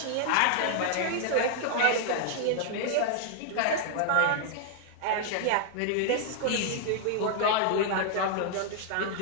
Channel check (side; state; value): both; different; correlation -0.01